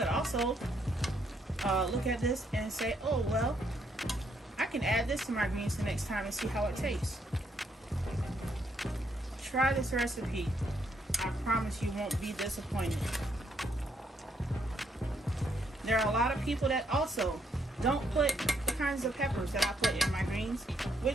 also look at this and say, oh, well, I can add this to my greens the next time and see how it tastes. Try this recipe. I promise you won't be disappointed. There are a lot of people that also don't put the kinds of peppers that I put in my greens,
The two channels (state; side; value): normal; both; correlation 0.73